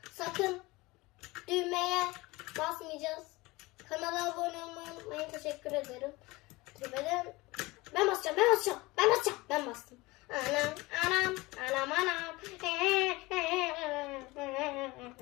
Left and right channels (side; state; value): right; quieter; 21.9 dB